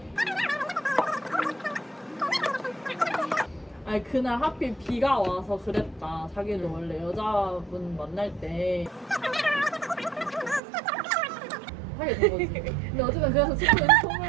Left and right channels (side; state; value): left; drops out; at 10.6 s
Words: 아니 그날 하필 비가 와서 그랬다. 자기도 원래 여자분 만날 때 하게 된 거지. 근데 어쨌든 그래서 축구